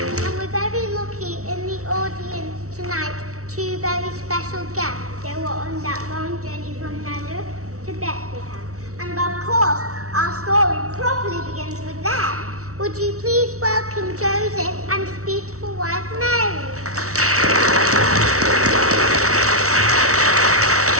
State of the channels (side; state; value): left; late; 0.64 ms